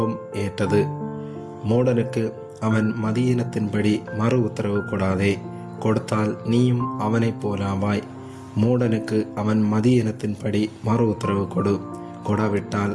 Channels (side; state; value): both; identical; correlation 1.00